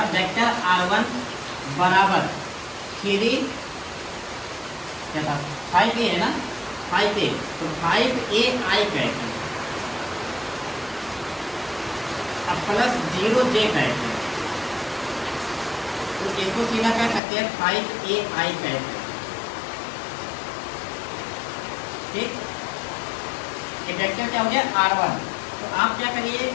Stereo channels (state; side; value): drops out; right; at 17.2 s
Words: वेक्टर r1 बराबर 3 क्या था 5a है ना, 5a, तो 5a i कैच, अब प्लस 0 j कैच, तो इसको सीधा क्या कहते हैं 5ai कहते हैं, ठीक। ये वेक्टर क्या हो गया r1, तो आप क्या करिए,